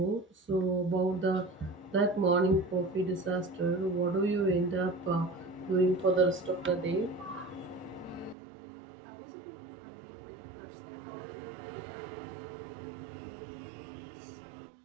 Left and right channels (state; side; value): drops out; left; at 8.3 s